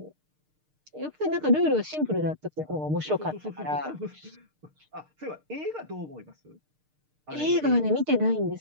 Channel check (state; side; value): late; left; 6.6 ms